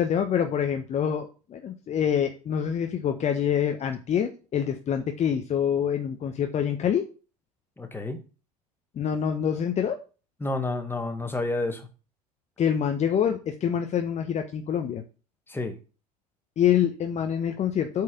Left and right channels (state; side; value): quieter; right; 7.7 dB